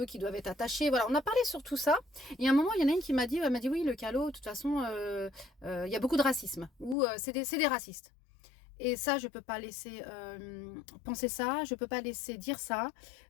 qui doivent être attachés. Voilà, on a parlé sur tout ça. Et à un moment, il y en a une qui m'a dit, elle m'a dit, oui, le calot, de toute façon, il y a beaucoup de racisme, ou c'est des racistes. Et ça, je ne peux pas laisser penser ça, je ne peux pas laisser dire ça.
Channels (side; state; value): right; drops out; at 7.0 s